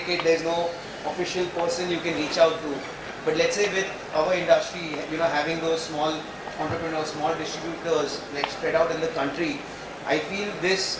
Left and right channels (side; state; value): both; identical; correlation 1.00